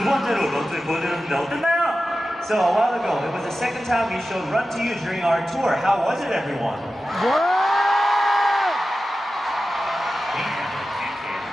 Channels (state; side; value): normal; both; correlation 0.93